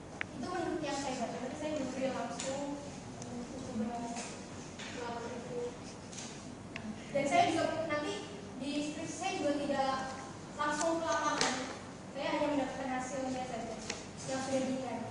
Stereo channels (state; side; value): identical; both; correlation 1.00